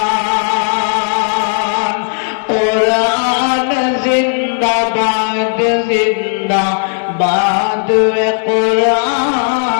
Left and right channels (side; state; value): right; silent; digital silence